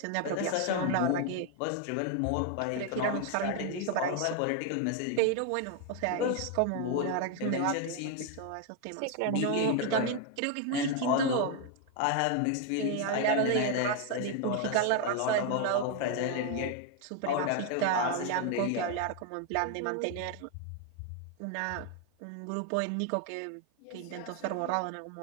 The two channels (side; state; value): both; different; correlation 0.01